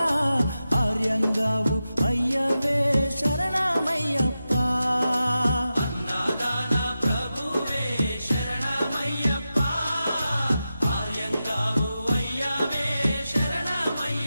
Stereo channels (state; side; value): inverted; both; correlation -0.91